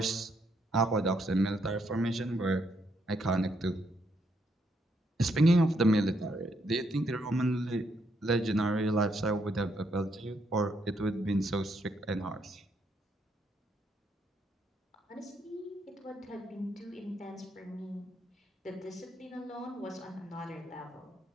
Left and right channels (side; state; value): both; normal; correlation 0.75